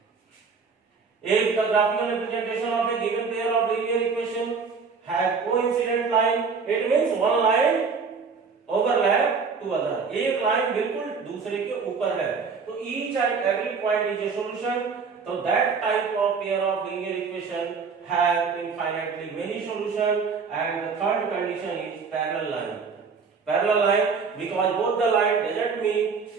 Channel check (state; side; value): quieter; left; 5.3 dB